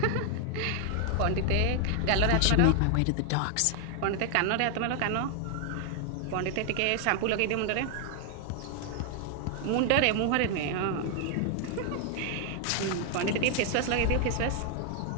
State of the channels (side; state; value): both; different; correlation 0.00